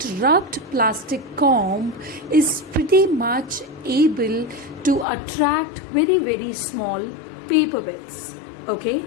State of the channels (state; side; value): drops out; right; at 5.1 s